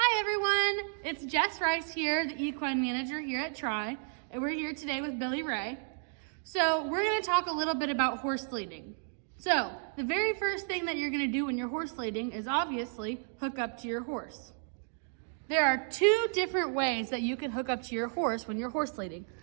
everyone, it's Jess Rice here, the equine manager here at Tri, and we're here today with Billy Ray. So we're going to talk a little bit about horse leading. So the very first thing that you're going to do when you're horse leading is obviously hook up to your horse. There are two different ways that you can hook up to your horse when you're horse leading.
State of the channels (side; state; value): left; silent; 56 dB below the other